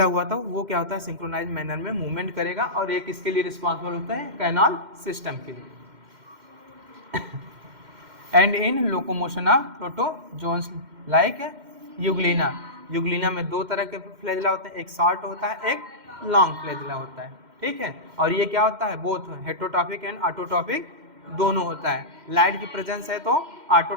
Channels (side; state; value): left; late; 2.1 ms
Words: हुआ था, वो क्या होता है, सिंक्रोनाइज मैनर में मूवमेंट करेगा, और एक इसके लिए रिस्पॉन्सिबल होता है कैनाल सिस्टम के लिए। And in locomotion of protozoans like Euglena. Euglena में दो तरह के फ्लैजेला होते हैं, एक शॉर्ट होता है, एक लॉन्ग फ्लैजेला होता है, ठीक है। और ये क्या होता है, बोथ हेटरोट्रॉपिक एंड ऑटोट्रॉपिक दोनों होता है। लाइट की प्रेजेंस है तो